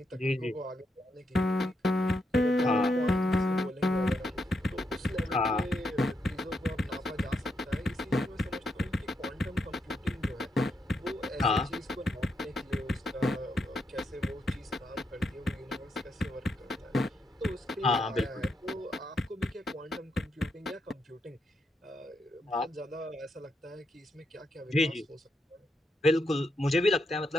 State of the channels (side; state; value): both; normal; correlation 0.81